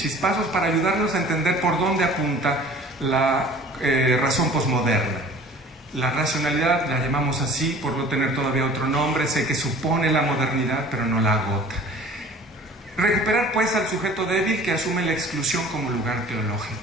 para ayudarnos a entender por dónde apunta la razón posmoderna. La racionalidad la llamamos así por no tener todavía otro nombre, sé que supone la modernidad, pero no la agota. Recuperar pues al sujeto débil que asume la exclusión como lugar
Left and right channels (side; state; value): both; normal; correlation 0.46